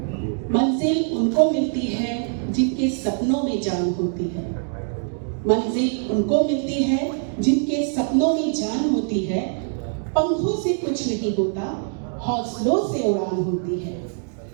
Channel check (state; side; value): silent; left; 57 dB below the other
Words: मंजिल उनको मिलती है जिनके सपनों में जान होती है। मंजिल उनको मिलती है जिनके सपनों में जान होती है। पंखों से कुछ नहीं होता, हौसलों से उड़ान होती है।